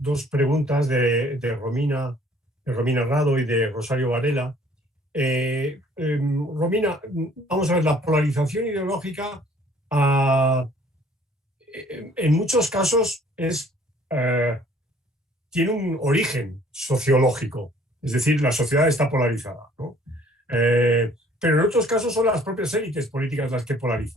preguntas de Romina Rado y de Rosario Varela. Romina, vamos a ver, la polarización ideológica en muchos casos tiene un origen sociológico, es decir, la sociedad está polarizada, ¿no? Pero en otros casos son las propias élites políticas las que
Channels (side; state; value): both; normal; correlation 0.57